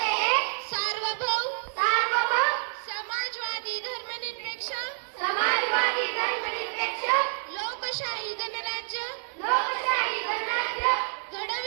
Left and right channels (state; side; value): silent; left; digital silence